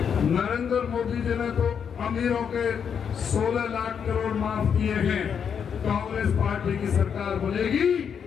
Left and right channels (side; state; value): right; quieter; 7.3 dB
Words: नरेंद्र मोदी जी ने तो अमीरों के 16 लाख करोड़ माफ किए हैं। कांग्रेस पार्टी की सरकार बनेगी